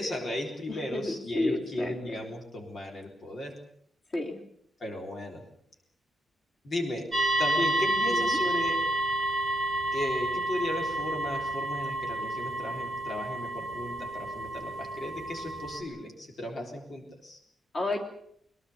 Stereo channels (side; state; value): both; normal; correlation 0.79